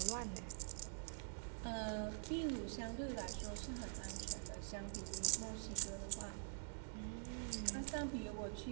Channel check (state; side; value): silent; left; digital silence